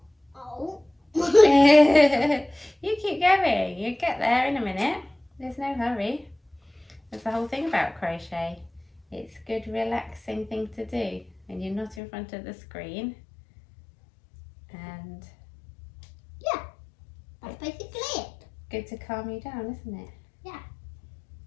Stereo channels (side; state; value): right; drops out; at 12.0 s